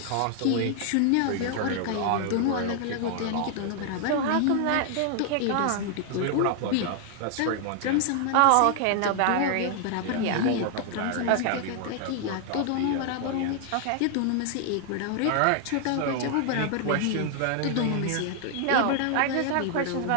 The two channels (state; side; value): different; both; correlation 0.00